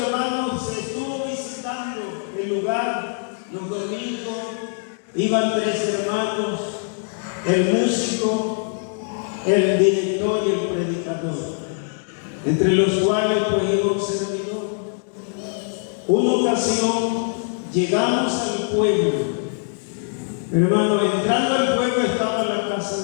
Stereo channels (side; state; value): right; silent; 58 dB below the other